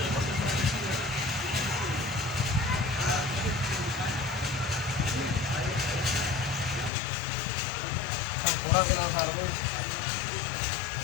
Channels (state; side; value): drops out; right; at 6.9 s